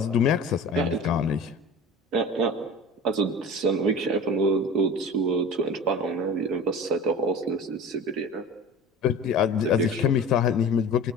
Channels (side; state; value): both; normal; correlation 0.36